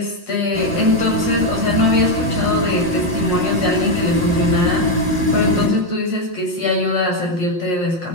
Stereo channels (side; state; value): left; late; 5.6 ms